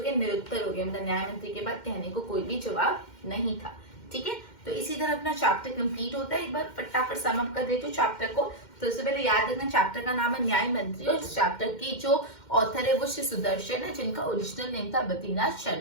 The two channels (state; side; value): late; right; 2.1 ms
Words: गए, निरुत्तर हो गए, मतलब न्यायमंत्री के बाद कहने को कोई भी जवाब नहीं था। ठीक है, तो इसी तरह अपना चैप्टर कंप्लीट होता है। एक बार फटाफट सम अप कर देती हूँ चैप्टर को। तो उससे पहले याद रखना, चैप्टर का नाम है न्याय मंत्री और इस चैप्टर की जो ऑथर है वो श्री सुदर्शन है, जिनका ओरिजिनल नेम था बद्रीनाथ